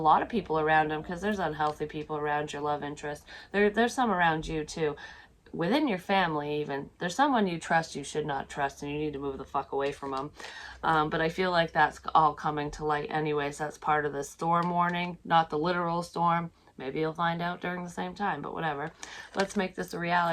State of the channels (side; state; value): both; identical; correlation 1.00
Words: of people around them, because there's unhealthy people around your love interest. There's some around you too. Within your family even. There's someone you trust you should not trust, and you need to move the fuck away from them. But I feel like that's all coming to light anyways. That's part of the storm warning, not the literal storm. Maybe you'll find out during the same time, but whatever. Let's make this a